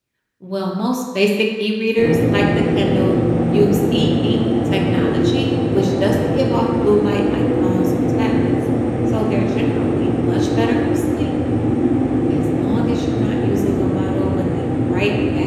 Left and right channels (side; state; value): both; identical; correlation 1.00